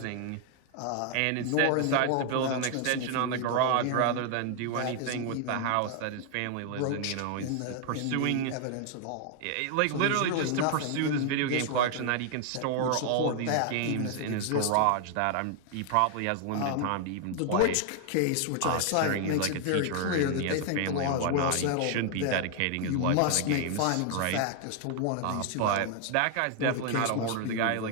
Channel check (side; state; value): both; different; correlation 0.00